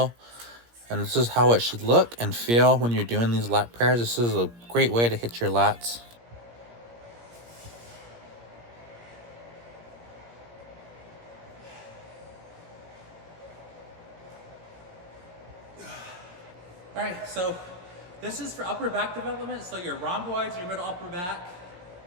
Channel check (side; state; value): left; late; 17 ms